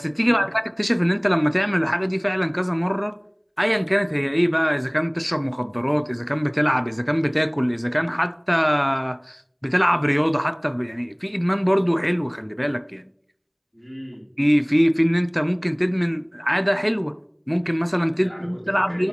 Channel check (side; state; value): both; identical; correlation 1.00